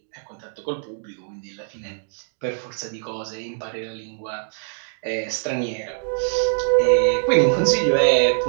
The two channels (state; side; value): silent; left; digital silence